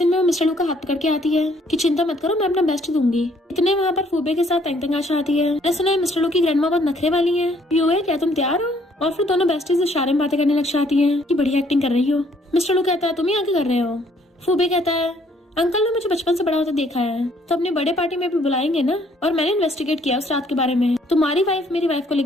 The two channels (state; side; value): normal; both; correlation 0.64